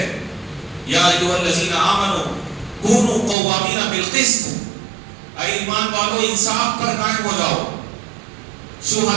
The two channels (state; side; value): drops out; left; at 3.4 s